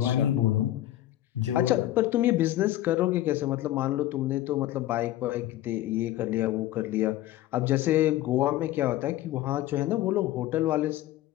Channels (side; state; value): right; quieter; 14.3 dB